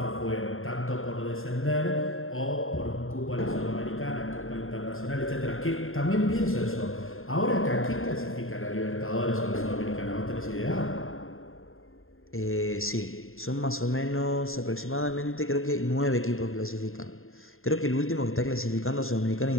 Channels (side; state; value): right; late; 0.61 ms